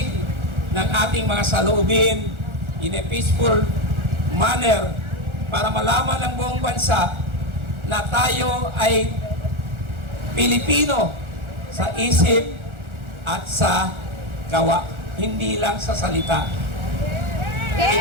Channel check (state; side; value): late; left; 1.4 ms